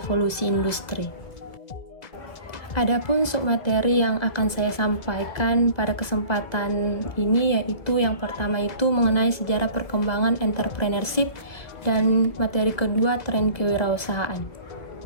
industri. Adapun submateri yang akan saya sampaikan pada kesempatan ini yaitu yang pertama itu mengenai sejarah perkembangan entrepreneurship dan materi kedua tren kewirausahaan.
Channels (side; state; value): right; late; 1.8 ms